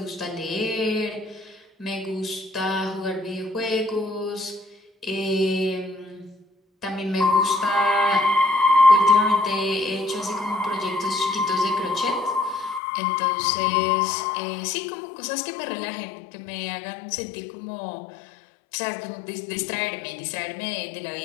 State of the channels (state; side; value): drops out; right; at 12.8 s